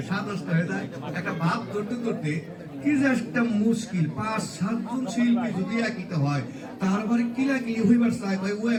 স্বাদ নষ্ট হয়ে যায়। একটা ভাব করতে করতে কি যে একটা মুশকিল, 5-7 জন শিল্পী যদি একইতে হয় তারপরে কিলাকিলি হইবার চাই, ভাই ও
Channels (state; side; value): identical; both; correlation 1.00